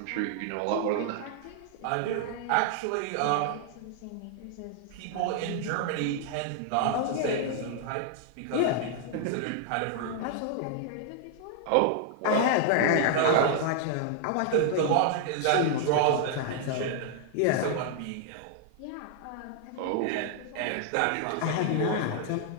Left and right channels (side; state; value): both; different; correlation -0.01